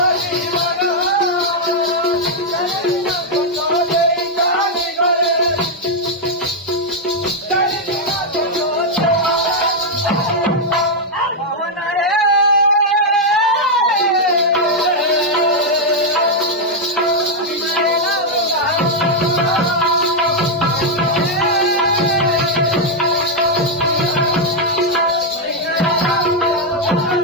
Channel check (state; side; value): normal; both; correlation -0.01